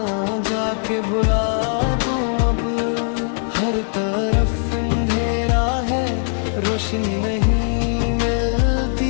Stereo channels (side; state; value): right; silent; 66 dB below the other